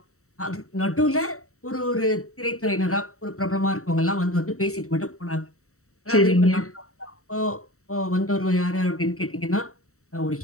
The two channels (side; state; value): right; late; 0.64 ms